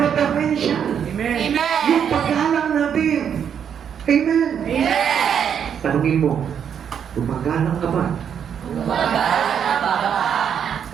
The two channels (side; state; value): left; quieter; 8.1 dB